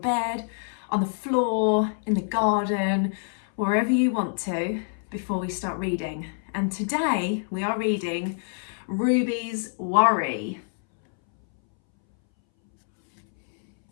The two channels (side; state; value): right; silent; 61 dB below the other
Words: on the floor, in the garden, wherever you want to before we start reading. And today we are reading Ruby's Worry.